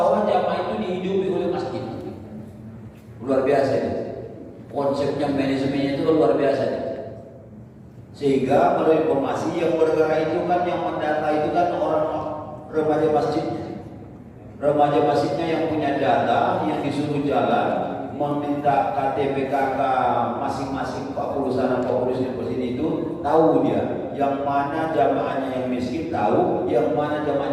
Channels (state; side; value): identical; both; correlation 1.00